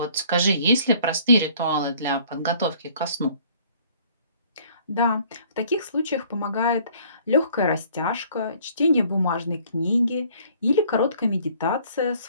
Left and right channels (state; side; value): inverted; both; correlation -0.56